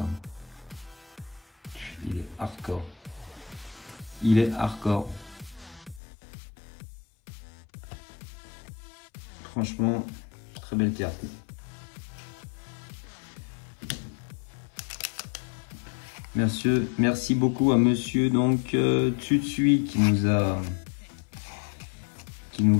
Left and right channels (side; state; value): right; drops out; at 6.0 s